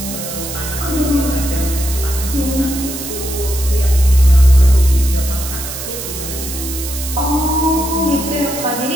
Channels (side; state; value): right; noise; hiss, 8 dB below the sound